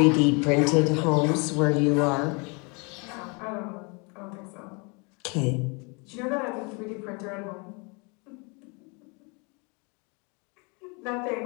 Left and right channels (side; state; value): right; quieter; 31.7 dB